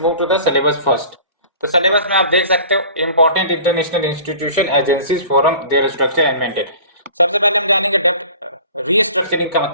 to the syllabus first. तो सिलेबस में आप देख सकते हो important international institution agencies forum their structure and maintain. सबसे पहले हम जानेंगे डेब्ट रीस्ट्रक्चरिंग का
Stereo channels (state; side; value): inverted; both; correlation -0.44